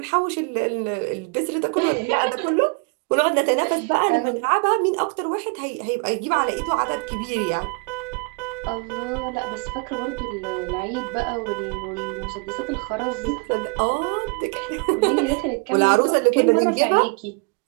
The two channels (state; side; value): quieter; left; 32.7 dB